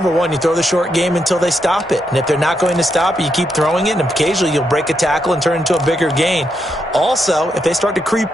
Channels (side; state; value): both; normal; correlation 0.81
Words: one, you throw the short game until they stop it. And if they're not going to stop it, you keep throwing it, and occasionally you'll break a tackle and turn into a bigger gain. Also, if they start to